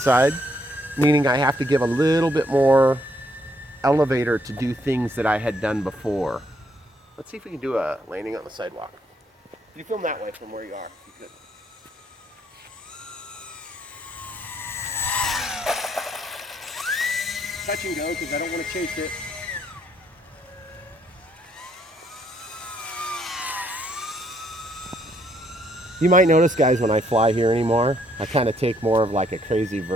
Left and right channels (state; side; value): normal; both; correlation 0.71